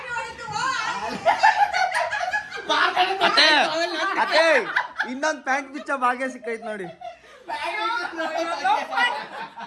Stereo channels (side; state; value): both; identical; correlation 1.00